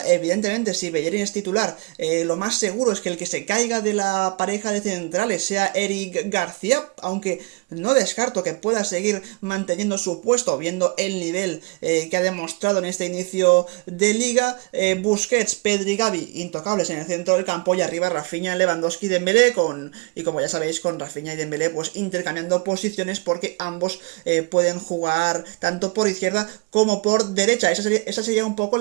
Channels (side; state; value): left; quieter; 30.4 dB